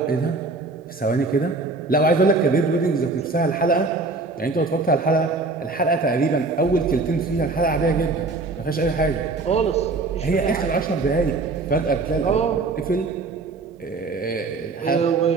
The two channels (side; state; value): left; quieter; 3.6 dB